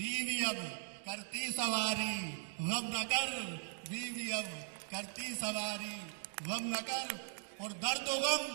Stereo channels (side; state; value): left; silent; digital silence